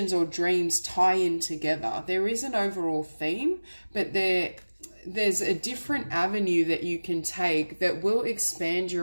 or dreams tie in together. There is an overall theme, but there's a different avenue that you can take that will expand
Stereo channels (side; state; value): both; inverted; correlation -1.00